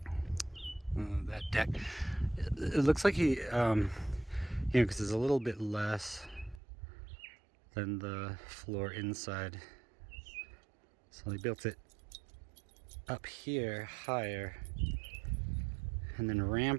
that deck. It looks like he, because it's a little bit less than the floor inside, so he built it up here higher and then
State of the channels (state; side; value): drops out; left; at 6.6 s